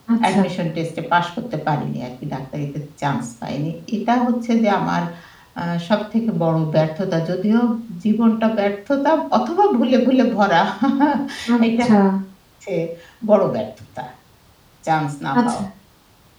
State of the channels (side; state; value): both; identical; correlation 1.00